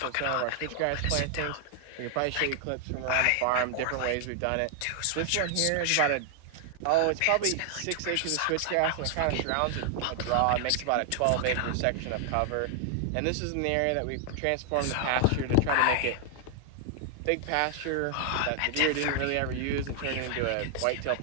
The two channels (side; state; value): both; different; correlation 0.00